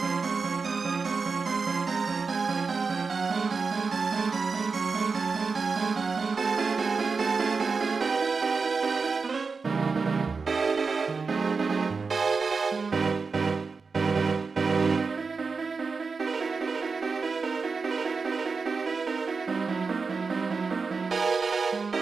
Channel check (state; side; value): quieter; left; 4.7 dB